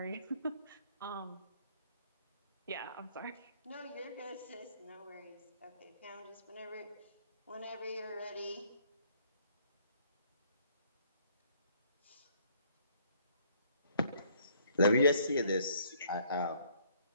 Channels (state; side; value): inverted; both; correlation -0.63